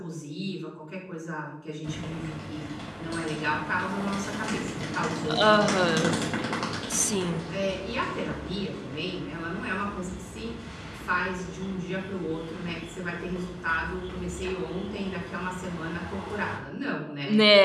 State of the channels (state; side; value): identical; both; correlation 1.00